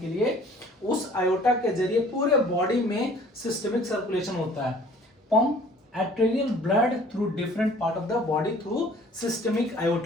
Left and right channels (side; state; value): both; normal; correlation 0.52